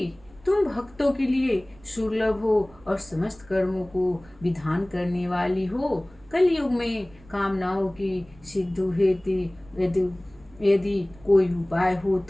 तुम भक्तों के लिए सुलभ हो और समस्त कर्मों को विधान करने वाली हो। कलयुग में कामनाओं की सिद्धि हेतु यदि यदि कोई उपाय हो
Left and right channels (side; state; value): right; noise; rumble, 25 dB below the sound